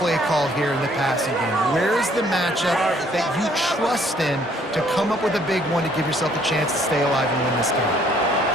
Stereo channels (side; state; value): both; normal; correlation 0.63